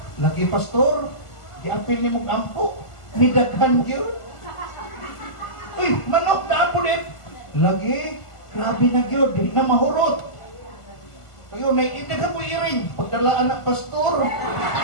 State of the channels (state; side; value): late; right; 1.4 ms